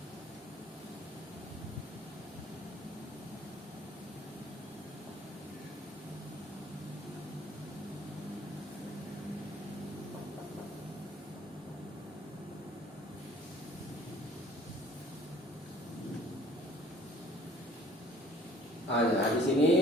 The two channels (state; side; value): normal; both; correlation 0.54